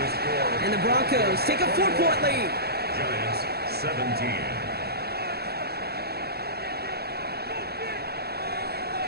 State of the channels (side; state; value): left; late; 0.46 ms